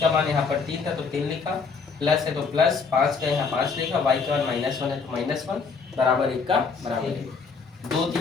का मान यहाँ पर 3 था तो 3 लिखा, प्लस है तो प्लस 5 का यहाँ 5 लिखा, y का मान -1 है तो -1 बराबर 1 का बराबर है। 2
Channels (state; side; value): quieter; right; 5.1 dB